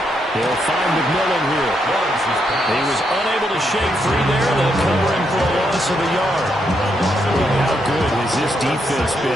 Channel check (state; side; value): normal; both; correlation 0.79